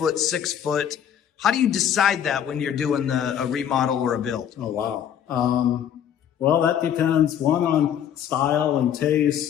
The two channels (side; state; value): right; quieter; 9.3 dB